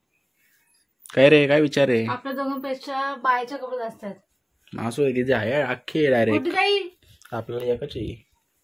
काय रे, काय विचार आहे? आपल्या दोघांपेक्षा बायच्या कपडे जास्त आहेत. असू दे, तिचे आहे अख्खी डायरेक्ट. आपल्याला एकच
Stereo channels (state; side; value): identical; both; correlation 1.00